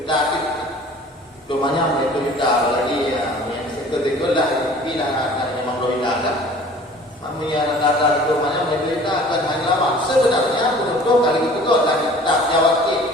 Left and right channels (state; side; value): normal; both; correlation 0.48